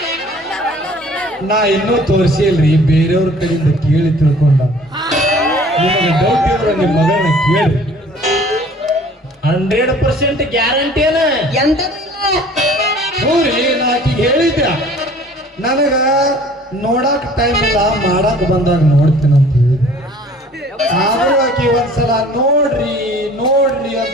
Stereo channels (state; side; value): normal; both; correlation 0.51